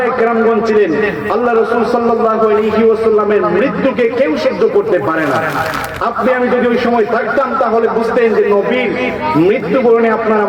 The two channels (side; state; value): both; identical; correlation 1.00